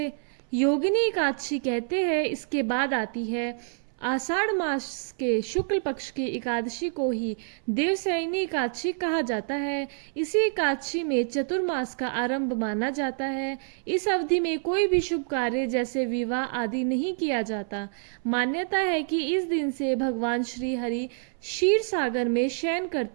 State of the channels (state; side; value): silent; left; 60 dB below the other